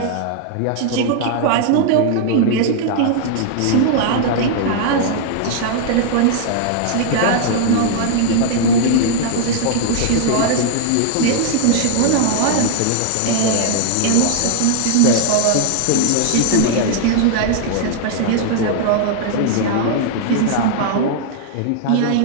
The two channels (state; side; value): different; both; correlation -0.01